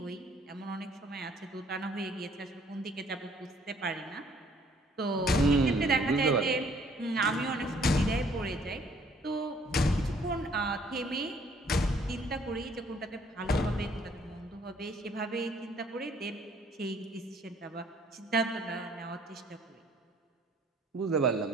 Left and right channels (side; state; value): both; normal; correlation 0.61